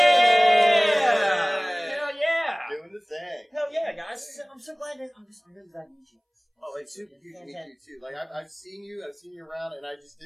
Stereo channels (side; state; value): both; identical; correlation 1.00